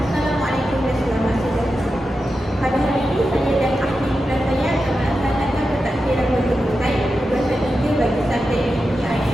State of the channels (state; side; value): normal; both; correlation 0.90